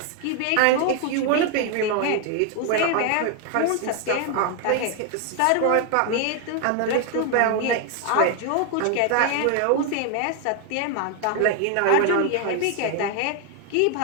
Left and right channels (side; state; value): both; different; correlation 0.00